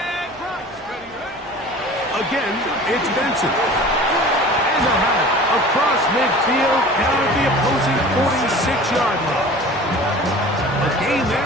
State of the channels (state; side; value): noise; right; hum, 27 dB below the sound